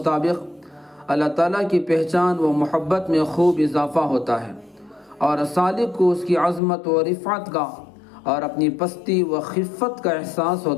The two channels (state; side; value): drops out; right; at 6.6 s